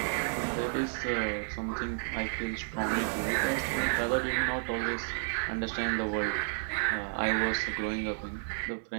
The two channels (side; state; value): left; silent; digital silence